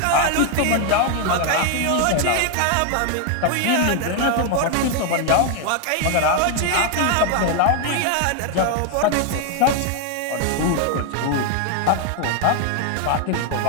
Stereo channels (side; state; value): both; different; correlation 0.01